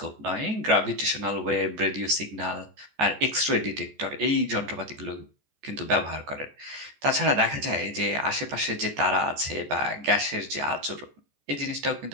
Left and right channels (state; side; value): late; left; 14 ms